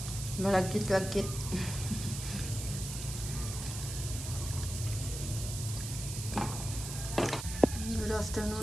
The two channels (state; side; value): noise; right; hiss, 7 dB below the sound